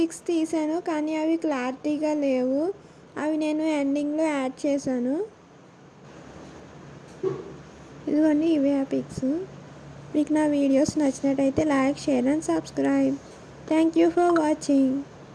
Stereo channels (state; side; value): identical; both; correlation 1.00